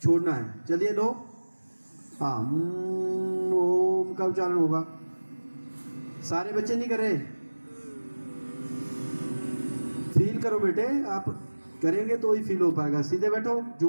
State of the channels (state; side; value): inverted; both; correlation -1.00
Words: छोड़ना है। चलिए लो। हाँ, ओम का उच्चारण होगा। सारे बच्चे नहीं कर रहे। फील करो बेटे, आप करेंगे तो ही फील हो पाएगा। सीधे बैठो,